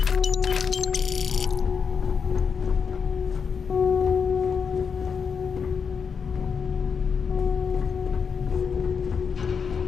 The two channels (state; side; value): quieter; right; 6.2 dB